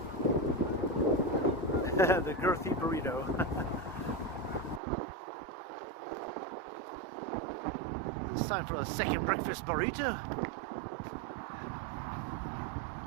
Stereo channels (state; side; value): drops out; left; at 4.8 s